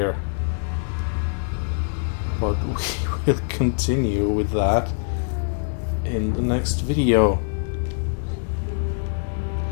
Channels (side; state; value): right; silent; digital silence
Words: But we will continue with that in the next video.